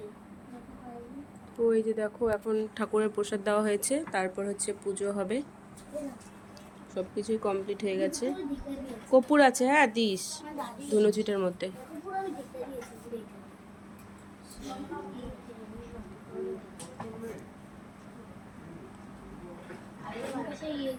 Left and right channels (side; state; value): both; identical; correlation 1.00